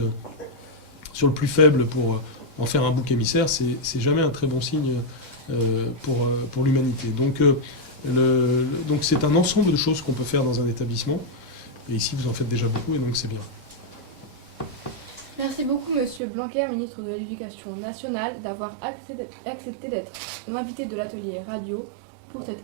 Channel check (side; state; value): left; drops out; at 16.2 s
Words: sur le plus faible pour en faire un bouc émissaire, c'est jamais un très bon signe pour l'humanité. Donc c'est un ensemble de choses qu'on peut faire dans un établissement, et ici vous en faites déjà beaucoup, et donc c'est bien. Merci beaucoup, Monsieur Blanquer, ministre de l'Éducation nationale, d'avoir accepté d'être l'invité de l'atelier radio pour